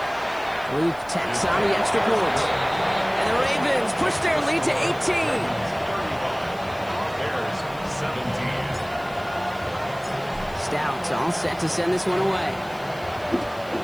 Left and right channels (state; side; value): noise; right; hiss, 24 dB below the sound